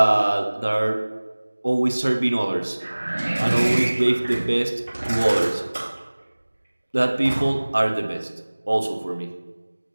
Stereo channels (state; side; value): inverted; both; correlation -1.00